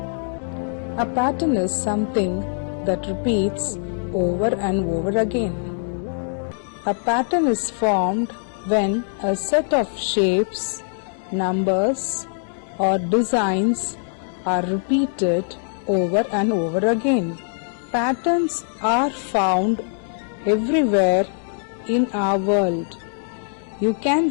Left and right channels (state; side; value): silent; right; digital silence